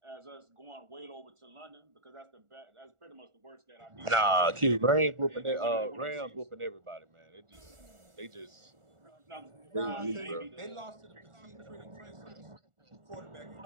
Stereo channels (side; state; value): left; late; 1.4 ms